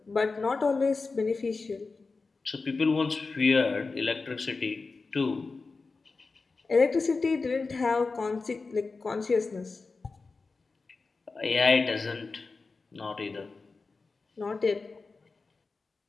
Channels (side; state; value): right; quieter; 4.1 dB